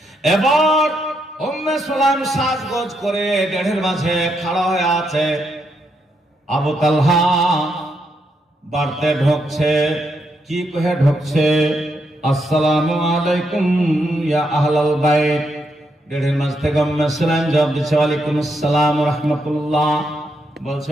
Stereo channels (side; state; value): both; normal; correlation 0.79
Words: এবার উম্মে সুলাইম সাজগোজ করে দেড়ের মাঝে খাড়া হয়ে আছে, আবু তালহা বাড়তে ঢুকছে, কি কহে ঢুকছে, আসসালামু আলাইকুম ইয়া আহলাল বাইত। দেড়ের মাঝ থেকে উম্মে সুলাইম জবাব দিচ্ছে ওয়ালাইকুম আসসালাম ওয়া রাহমাতুল্লাহ। বলছে